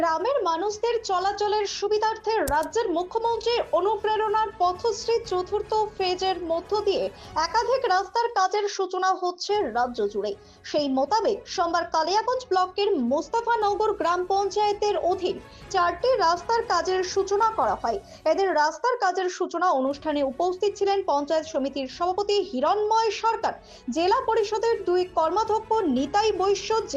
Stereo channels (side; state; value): both; identical; correlation 1.00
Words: মানুষদের চলাচলের সুবিধার্থে রাজ্যের মুখ্যমন্ত্রীর অনুপ্রেরণার পথশ্রী চতুর্থ ফেজের মধ্য দিয়ে একাধিক রাস্তার কাজের সূচনা হচ্ছে রাজ্য জুড়ে। সেই মোতাবেক সোমবার কালিয়াগঞ্জ ব্লকের মোস্তাফানগর গ্রাম পঞ্চায়েতের অধীন 4টি রাস্তার কাজের সূচনা করা হয়। এদের রাস্তার কাজের সূচনা অনুষ্ঠানে উপস্থিত ছিলেন পঞ্চায়েত সমিতির সভাপতি হিরণময় সরকার, জেলা পরিষদের 2 কর্মাধ্যক্ষ নিতাই বৈশ্য,